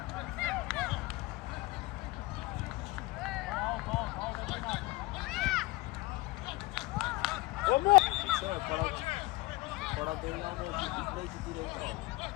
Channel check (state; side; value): quieter; right; 21.4 dB